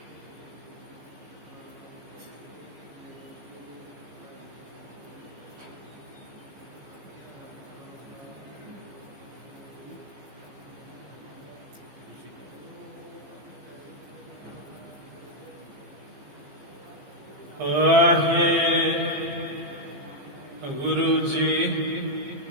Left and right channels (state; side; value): late; left; 15 ms